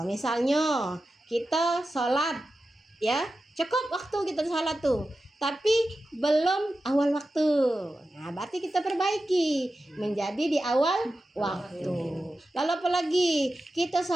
misalnya kita sholat, ya, cukup waktu kita sholat tuh, tapi belum awal waktu. Nah, berarti kita perbaiki menjadi di awal waktu. Lalu apalagi kita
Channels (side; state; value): both; normal; correlation 0.93